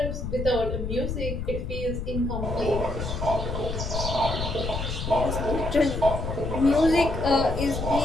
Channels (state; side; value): noise; left; rumble, 4 dB below the sound